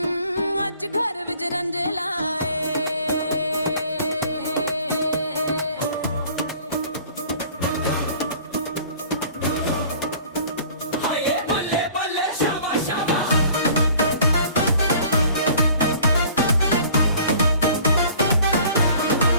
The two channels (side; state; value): both; inverted; correlation -0.51